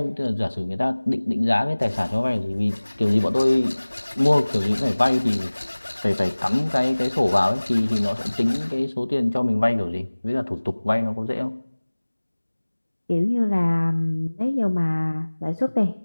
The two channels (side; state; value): both; inverted; correlation -1.00